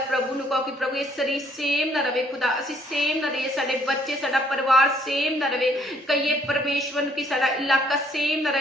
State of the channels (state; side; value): normal; both; correlation 0.65